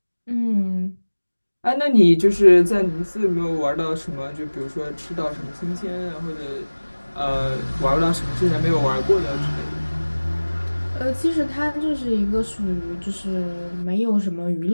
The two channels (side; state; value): both; inverted; correlation -1.00